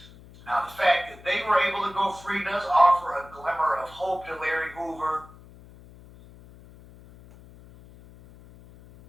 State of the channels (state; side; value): noise; left; hum, 21 dB below the sound